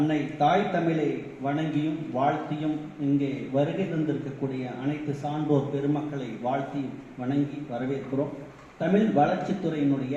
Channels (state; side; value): identical; both; correlation 1.00